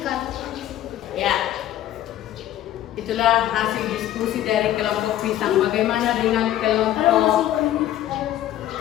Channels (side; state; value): right; quieter; 12.7 dB